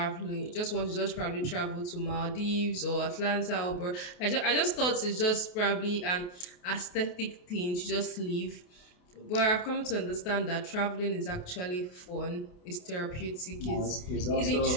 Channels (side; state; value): right; late; 28 ms